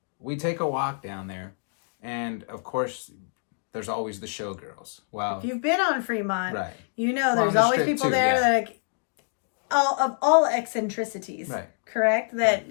we take a walk down there. And, of course, there's always the showgirls. Well, if you've been on Fremont, right. There's always people there that of all eccentricities, right. Correct? That,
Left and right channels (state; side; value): silent; right; 60 dB below the other